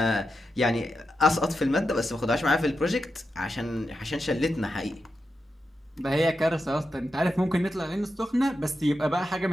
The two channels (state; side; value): normal; both; correlation 0.88